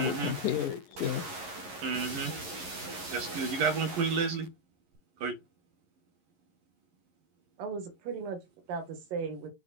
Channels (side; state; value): left; late; 11 ms